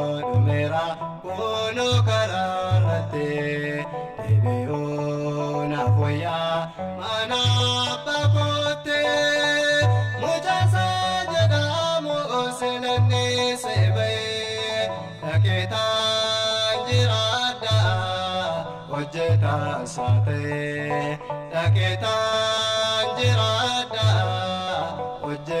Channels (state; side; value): identical; both; correlation 1.00